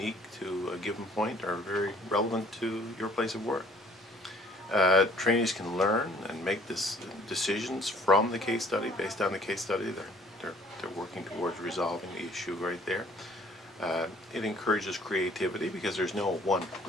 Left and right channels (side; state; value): both; normal; correlation 0.57